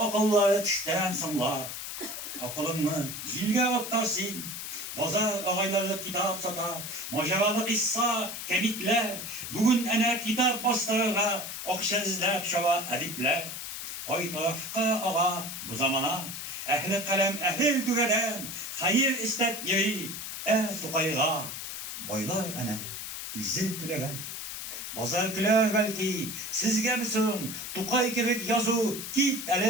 tişten sımla, Akılını zilge attarsın, Bozar ağayları kitap sata, Maceralı kissa, kemikler, Bugün ene kitap bastırırga, Okşezlep şava edipler, Koy tarafka ağa bu zamana, Ehli kalem ehil düveden, Hayır istep yeri, tukayga, Boylar ene, üzzet tülegen. Bozar güler belki, sizge misin, Tukay kibik yazı, git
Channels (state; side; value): noise; left; hiss, 7 dB below the sound